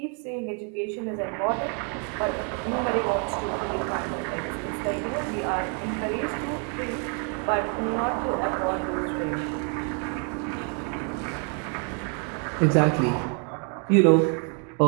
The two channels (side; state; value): left; quieter; 39.8 dB